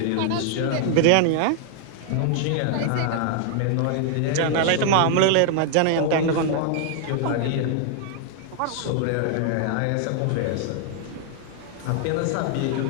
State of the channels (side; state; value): both; different; correlation 0.00